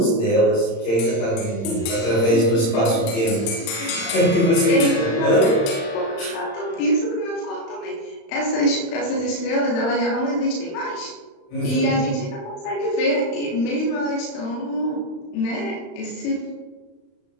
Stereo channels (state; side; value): late; right; 35 ms